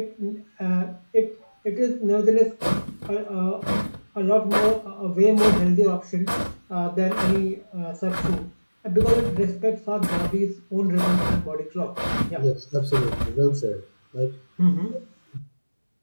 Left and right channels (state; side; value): inverted; both; correlation -1.00